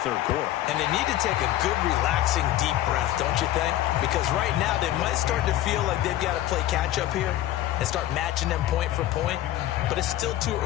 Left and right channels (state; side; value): quieter; right; 13.8 dB